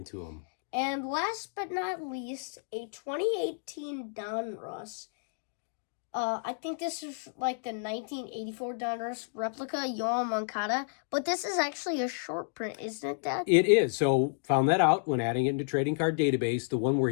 to them. And last but not least, a 2018 Donruss. I think this is like the 1984 Donruss replica, Yoel Moncada. But this is actually a short print, isn't it, Dad? It is. So found that out when adding it into Trading Card Database. The one where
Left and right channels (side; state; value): right; silent; digital silence